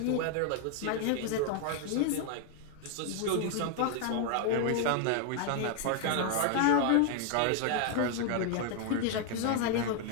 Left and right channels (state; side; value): different; both; correlation 0.00